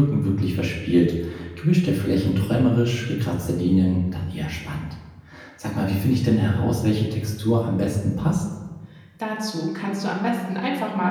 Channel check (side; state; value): both; identical; correlation 1.00